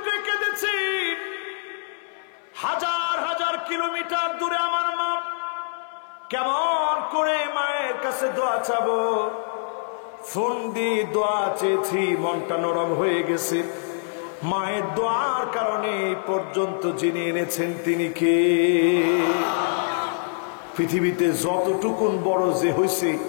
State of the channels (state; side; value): silent; right; digital silence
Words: কেঁদেছি। হাজার হাজার কিলোমিটার দূরে আমার মা, কেমন করে মায়ের কাছে দোয়া চাবো? ফোন দিয়ে দোয়া চেয়েছি, মনটা নরম হয়ে গেছে। মায়ের দোয়ার কারণে এই পর্যন্ত যিনি এনেছেন তিনি কে? পৃথিবীতে যতটুকুন বড় যে হয়েছে,